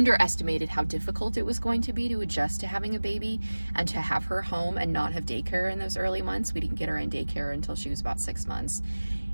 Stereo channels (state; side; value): inverted; both; correlation -1.00